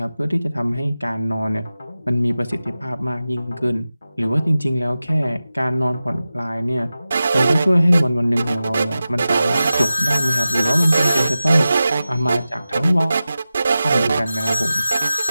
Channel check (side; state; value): both; inverted; correlation -0.94